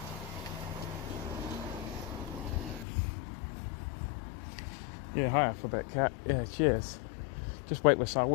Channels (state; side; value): drops out; right; at 2.9 s